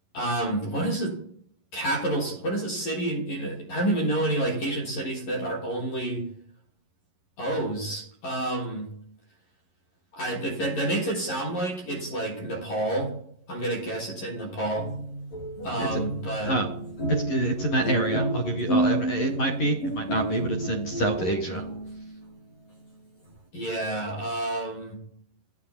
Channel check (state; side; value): late; right; 11 ms